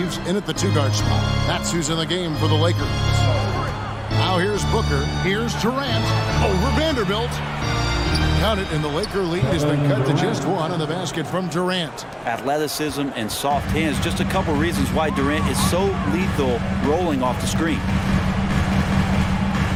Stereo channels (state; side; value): identical; both; correlation 1.00